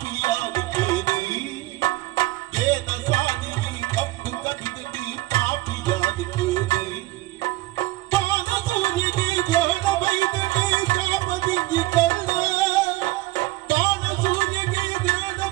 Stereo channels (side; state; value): left; quieter; 18.3 dB